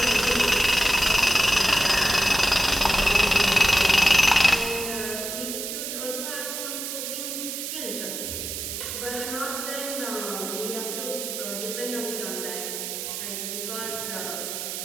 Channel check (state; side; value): noise; right; hiss, 5 dB below the sound